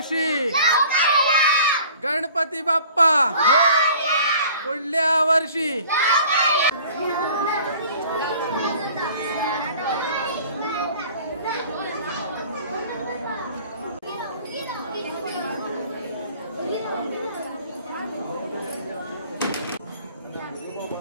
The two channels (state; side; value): inverted; both; correlation -0.49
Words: गणपती बाप्पा पुढल्या वर्षी